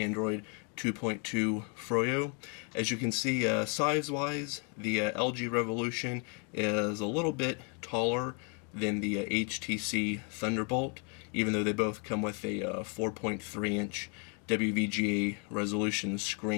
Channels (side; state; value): right; quieter; 37.1 dB